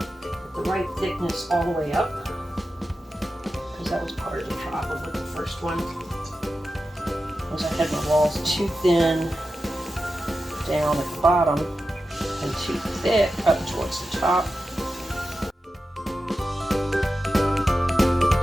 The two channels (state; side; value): normal; both; correlation 0.92